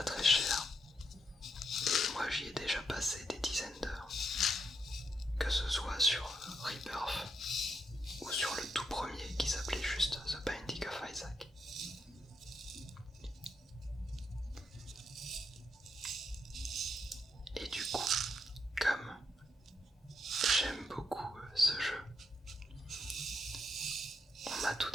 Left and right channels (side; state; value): both; normal; correlation 0.80